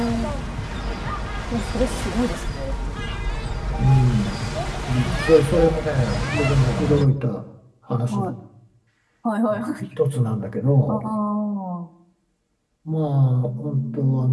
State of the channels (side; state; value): both; identical; correlation 1.00